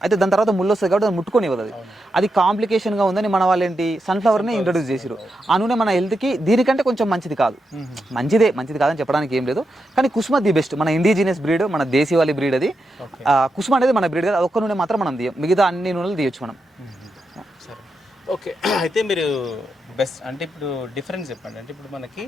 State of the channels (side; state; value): both; normal; correlation 0.86